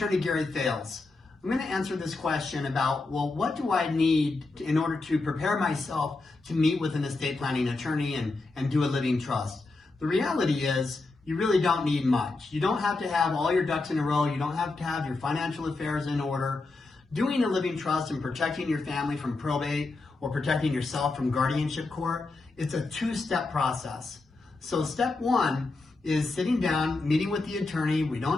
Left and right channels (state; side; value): quieter; right; 3.5 dB